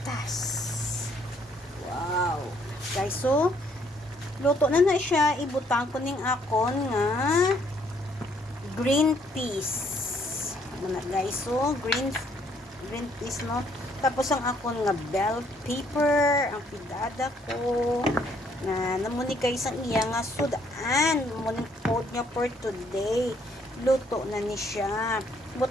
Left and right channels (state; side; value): normal; both; correlation 0.67